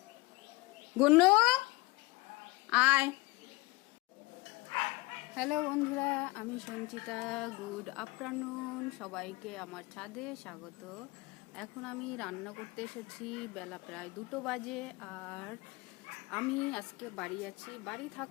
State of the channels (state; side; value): quieter; right; 23.6 dB